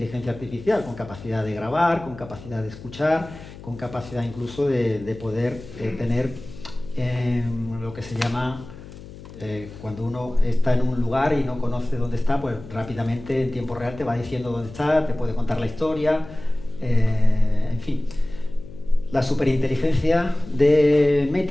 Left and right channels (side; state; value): left; noise; hum, 16 dB below the sound